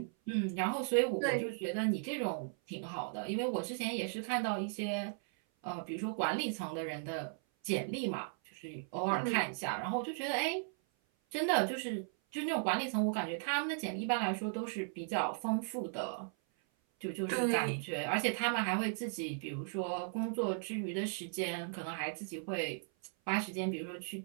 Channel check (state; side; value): silent; left; 53 dB below the other